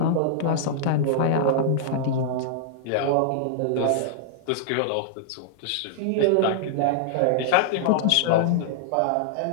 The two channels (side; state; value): both; different; correlation -0.01